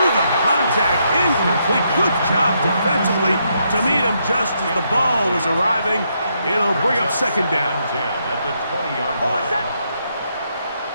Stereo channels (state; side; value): inverted; both; correlation -0.77